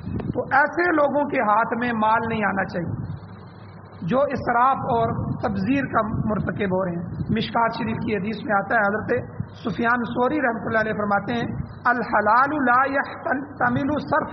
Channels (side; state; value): both; identical; correlation 1.00